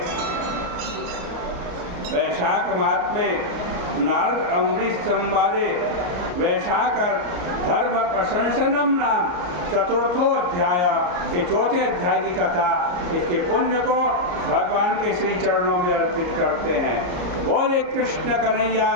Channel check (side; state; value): left; late; 34 ms